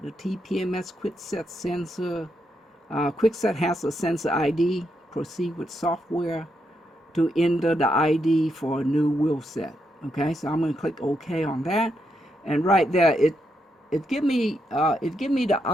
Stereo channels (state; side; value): normal; both; correlation 0.81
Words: The TPMS quickset sensor. Quickset has a sensor ID. Proceed with software to enter the ID for a new wheel set. Okay, so I'm going to click OK on that, and right there it give me the